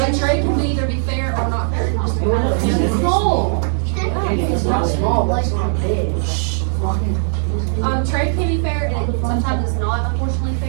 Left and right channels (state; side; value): silent; left; digital silence